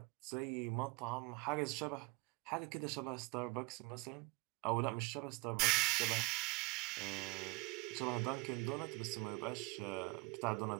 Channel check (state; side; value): quieter; left; 25.8 dB